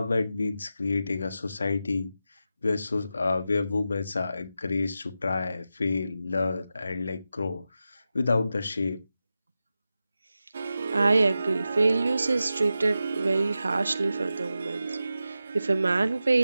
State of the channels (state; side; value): inverted; both; correlation -0.91